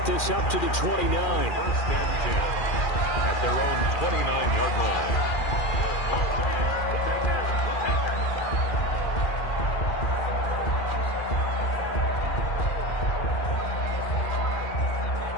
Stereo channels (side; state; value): right; late; 2.4 ms